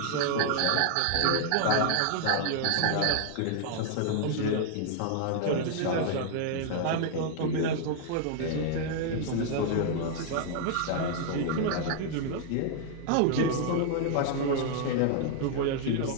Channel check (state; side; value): different; both; correlation 0.00